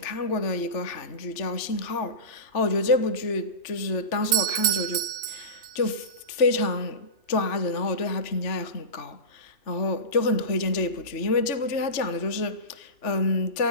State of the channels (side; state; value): right; late; 3.4 ms